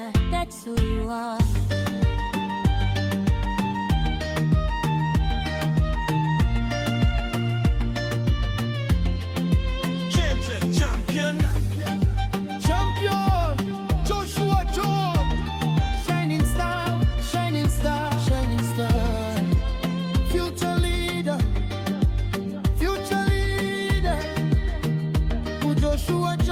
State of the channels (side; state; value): both; identical; correlation 1.00